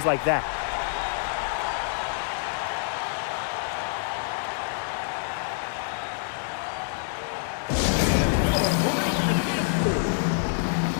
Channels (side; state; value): right; silent; 58 dB below the other